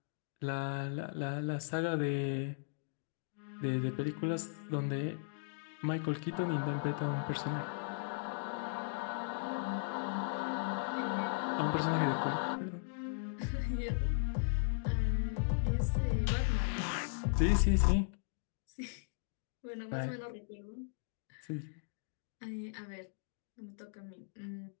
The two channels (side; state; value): right; silent; digital silence